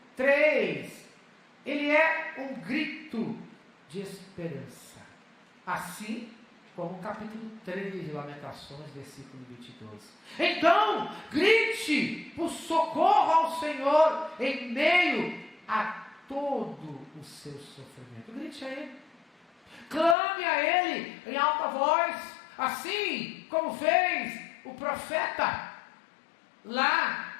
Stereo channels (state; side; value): drops out; right; at 20.2 s